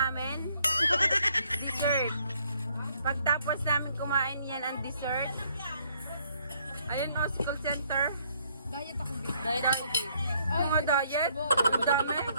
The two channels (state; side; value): inverted; both; correlation -0.67